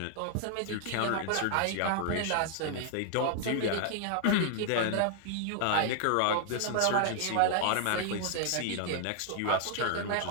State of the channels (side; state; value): both; different; correlation 0.00